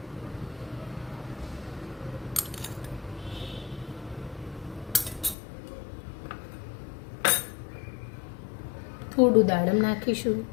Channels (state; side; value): drops out; right; at 5.4 s